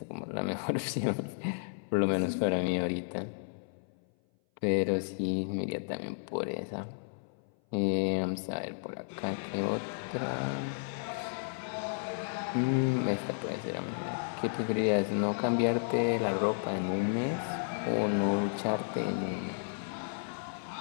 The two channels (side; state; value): right; silent; 56 dB below the other